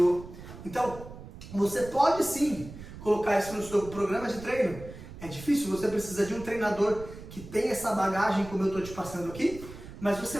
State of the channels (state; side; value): noise; right; rumble, 14 dB below the sound